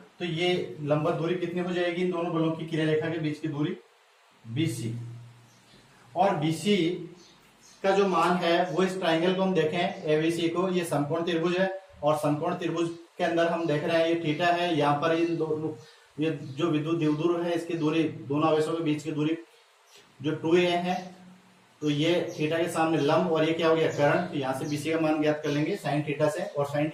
तो ये लंबवत दूरी कितनी हो जाएगी, इन दोनों बलों की क्रिया रेखा के बीच की दूरी बीसी। और बीसी का जो मान है वो इस ट्राइंगल को हम देखें एबीसी को, ये समकोण त्रिभुज है और समकोण त्रिभुज के अंदर हम देख रहे हैं ये थीटा है। यहाँ पर इन दोनों, ये जो विद्युत द्विध्रुव है इसकी दूरी, दोनों आवेशों के बीच की दूरी जो 2a है। तो ये थीटा के सामने लंब और ये क्या हो गया, कर्ण। तो यहाँ से बीसी का मान ज्ञात कर लेंगे साइन थीटा से। और साइन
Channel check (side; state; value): both; identical; correlation 1.00